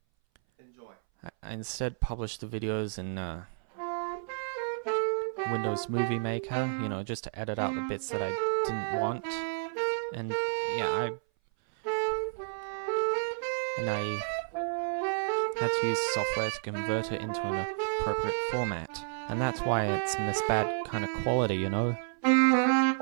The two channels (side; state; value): left; silent; 57 dB below the other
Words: I instead published the videos in Windows Movie Maker, you know, just to edit out the bits that I didn't want. And yeah, I had to use software to convert it into an appropriate format. And that's why it's in this bad kind of quality, you know?